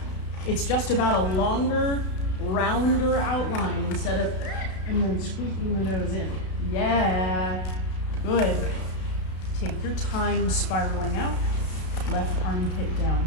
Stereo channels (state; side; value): late; right; 33 ms